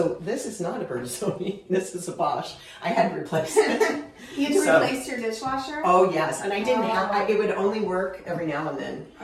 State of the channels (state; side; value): identical; both; correlation 1.00